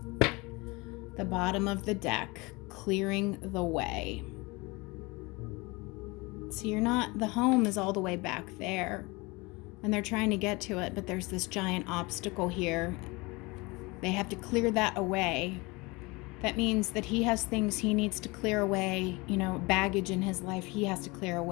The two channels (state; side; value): quieter; right; 25.1 dB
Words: The bottom of the deck, clearing the way. So the home is all the way back there, and they're trying to get to it, but there's this giant obstacle here. They have to clear that away. That means that he has things he needs to clear away, baggage in his life he has to clear